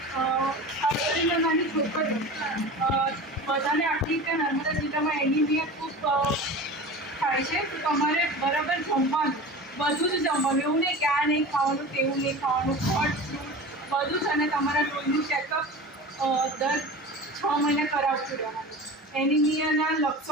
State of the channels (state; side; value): normal; both; correlation 0.34